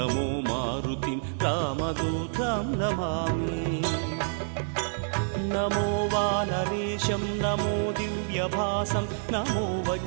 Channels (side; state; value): left; silent; digital silence